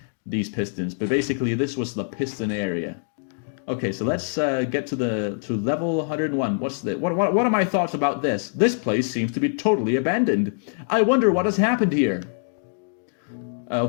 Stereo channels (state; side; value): silent; right; digital silence